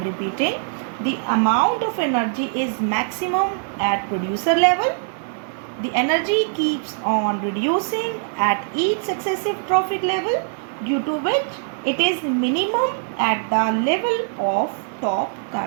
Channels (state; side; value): silent; left; digital silence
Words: repeating, the amount of energy is maximum at producer level. The energy keeps on reducing at each successive trophic level, due to which it is minimum at the level of top